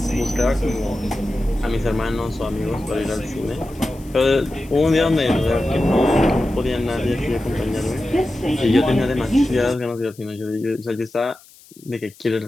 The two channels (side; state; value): left; noise; hiss, 25 dB below the sound